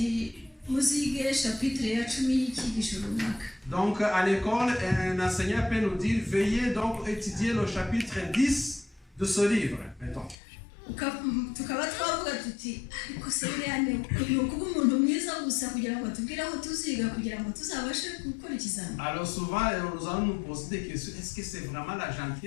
Donc à l'école, un enseignant peut nous dire veuillez donc étudier le chapitre 10 de ce livre. Mettons. Alors souvent nous allons nous poser des questions. Est-ce que c'est vraiment la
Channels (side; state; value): right; drops out; at 10.4 s